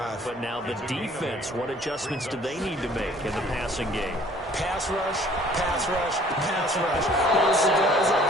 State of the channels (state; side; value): normal; both; correlation 0.54